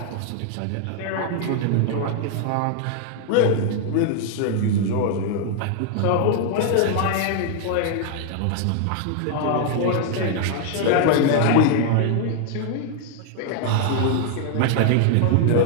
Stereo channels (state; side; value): different; both; correlation 0.00